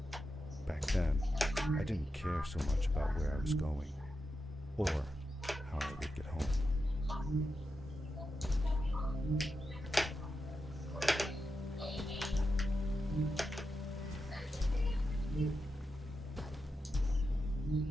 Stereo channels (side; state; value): both; normal; correlation 0.88